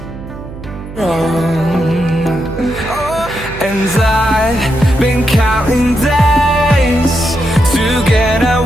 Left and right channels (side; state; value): right; noise; hum, 13 dB below the sound